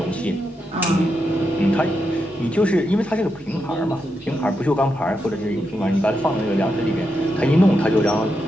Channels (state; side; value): normal; both; correlation 0.85